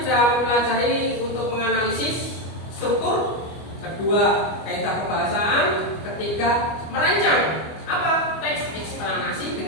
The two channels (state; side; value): late; right; 25 ms